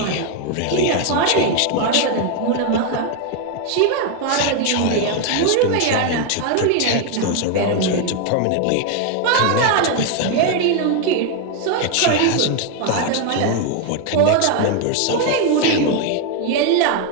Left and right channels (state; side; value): different; both; correlation 0.01